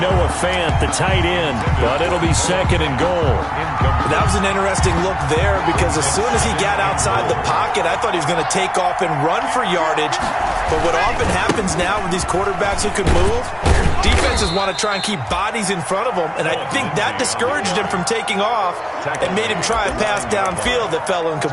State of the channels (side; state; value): both; identical; correlation 1.00